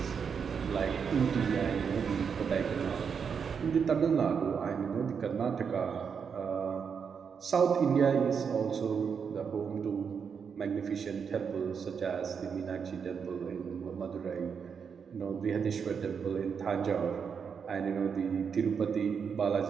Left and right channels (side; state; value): left; quieter; 6.5 dB